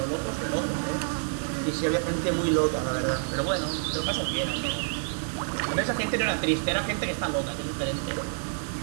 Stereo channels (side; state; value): left; silent; digital silence